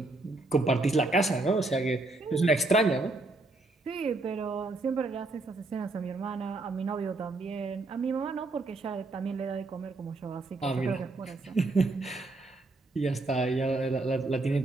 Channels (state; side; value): quieter; left; 3.1 dB